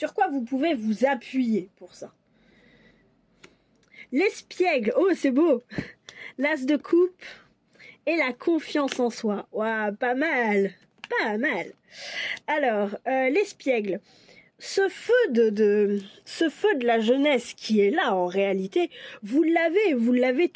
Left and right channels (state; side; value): identical; both; correlation 1.00